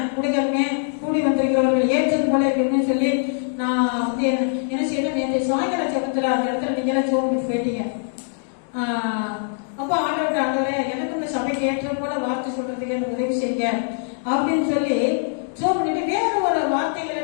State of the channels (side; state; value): right; silent; digital silence